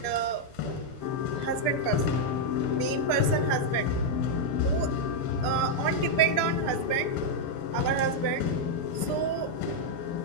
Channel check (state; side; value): late; right; 6.8 ms